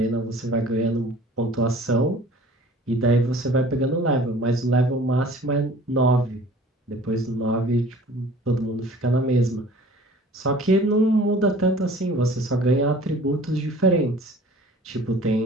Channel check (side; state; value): both; normal; correlation 0.48